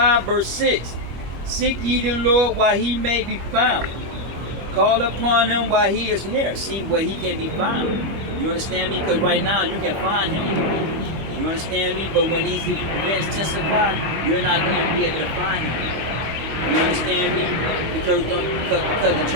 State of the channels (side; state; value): left; late; 25 ms